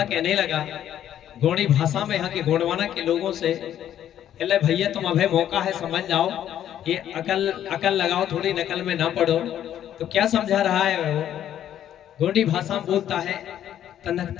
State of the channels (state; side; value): quieter; right; 10.9 dB